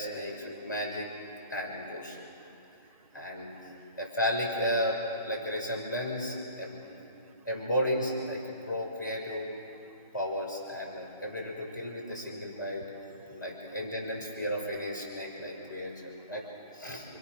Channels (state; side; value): inverted; both; correlation -0.46